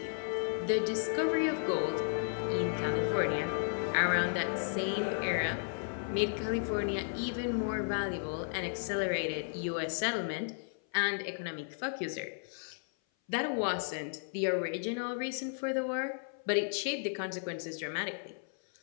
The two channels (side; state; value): right; silent; 55 dB below the other